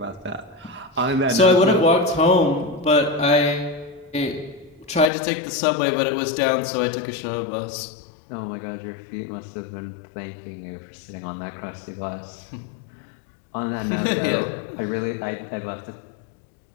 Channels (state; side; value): drops out; right; at 5.1 s